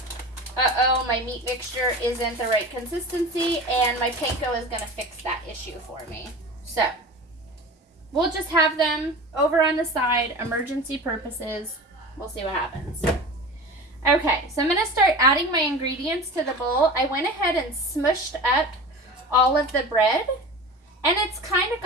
my meat mixture isn't the right consistency, and my panko is going to fix that issue for me. So, we'll just have them over on the side, emergency purposes. We'll see what happens. Okay, so I'm going to start adding my ingredients to the bowl. I went ahead and smushed up all of the bread, and it's kind of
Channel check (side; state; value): both; normal; correlation 0.33